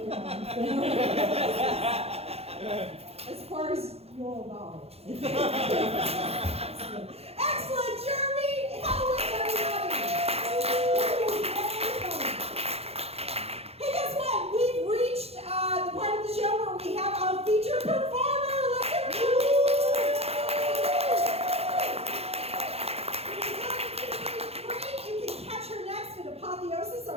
film. As far as you'll know. Excellent. Excellent, Jeremy! How is everybody? Hey, guess what? We've reached the part of the show where we have a featured performer. Let's hear it. You can catch her next at Apotheosis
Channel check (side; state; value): left; late; 0.29 ms